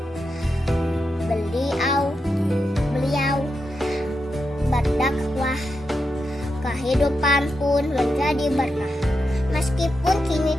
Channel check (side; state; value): both; normal; correlation 0.86